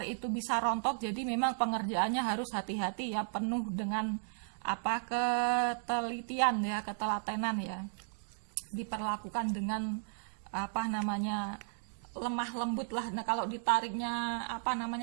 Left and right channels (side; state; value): left; silent; digital silence